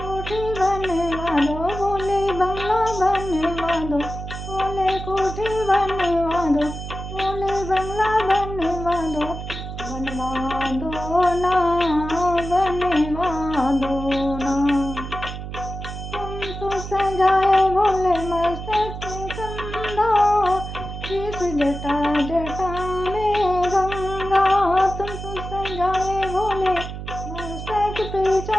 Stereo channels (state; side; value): noise; right; hum, 8 dB below the sound